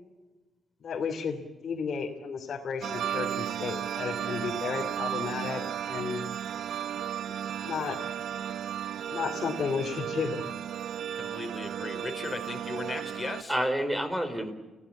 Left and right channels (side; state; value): both; normal; correlation 0.71